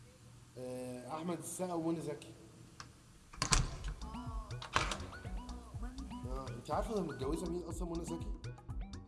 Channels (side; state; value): both; identical; correlation 1.00